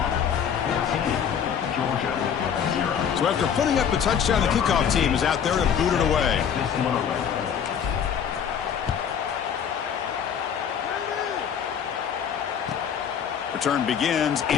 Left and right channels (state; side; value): quieter; right; 8.0 dB